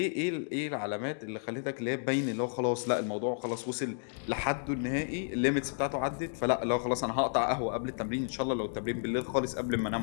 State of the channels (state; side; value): silent; right; digital silence